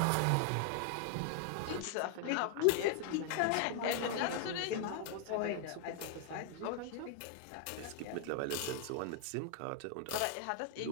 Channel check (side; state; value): both; different; correlation 0.00